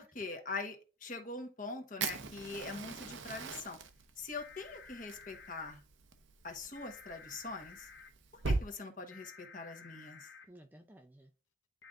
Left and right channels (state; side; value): normal; both; correlation 0.40